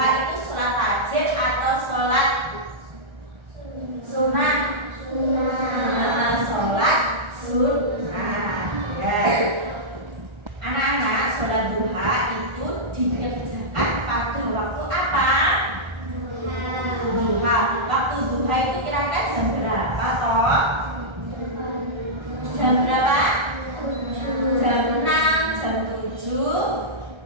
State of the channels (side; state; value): left; late; 1.3 ms